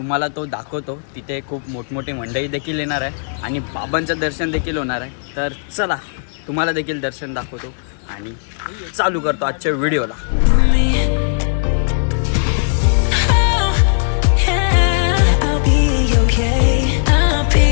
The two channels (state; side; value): silent; right; digital silence